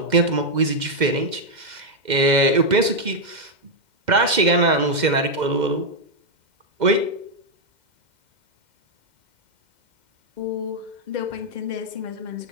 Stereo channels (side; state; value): left; late; 2.1 ms